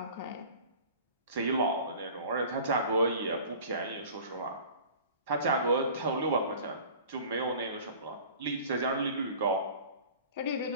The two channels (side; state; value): both; inverted; correlation -0.44